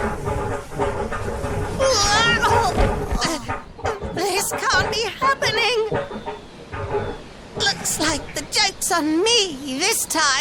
This can't be happening. Looks like the joke's on me this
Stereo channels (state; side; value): identical; both; correlation 1.00